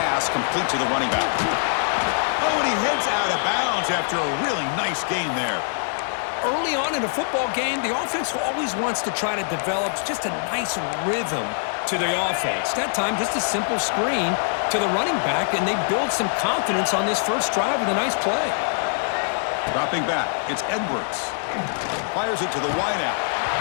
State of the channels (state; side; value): silent; right; digital silence